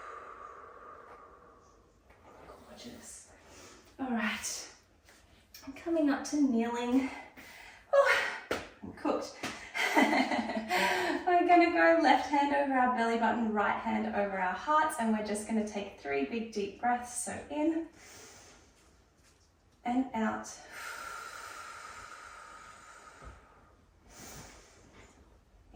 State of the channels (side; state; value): both; identical; correlation 1.00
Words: Gorgeous. All right, I'm coming up to kneeling. I'm cooked. We're going to go left hand over our belly button, right hand over our hearts, and we're just going to take 3 big deep breaths. So in and out.